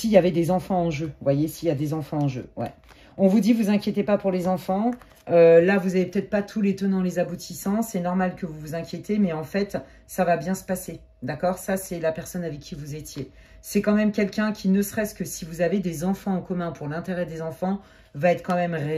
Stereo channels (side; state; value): both; identical; correlation 1.00